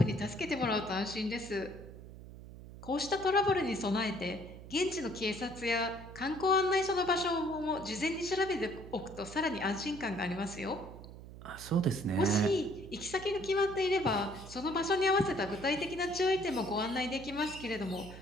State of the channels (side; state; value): right; noise; hum, 15 dB below the sound